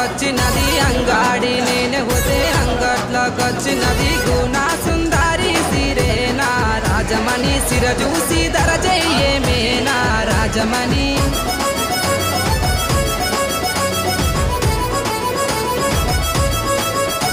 అంగాడి నేను పోతే అంగట్లోకొచ్చినది గుణ సుందరి సిరేనా రాజమణి సిర చూసి ధర చెయ్యేమేనా రాజమణి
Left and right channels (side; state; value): both; identical; correlation 1.00